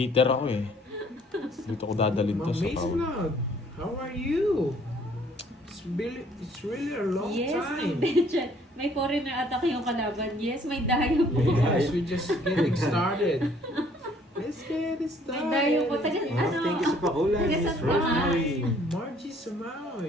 ako eh. Dito ko dadalhin to Ma'am sa Mace pawag. Vlog, how are you? It's really a long Yes, time. Ma'am Betchan. May foreigner attack yung kalaban. Yes, may dayo po. Yes, we're just getting started. Let's get it started. May dayo po. Taga, Oh, ano? thank you sa pakulay, Taga Miss Santa Rosemary. Hi, Margie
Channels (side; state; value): both; normal; correlation 0.60